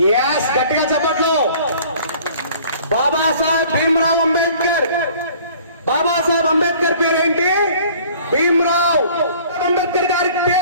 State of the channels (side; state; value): both; inverted; correlation -0.51